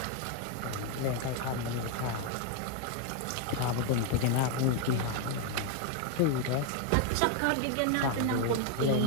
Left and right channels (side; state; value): both; different; correlation 0.00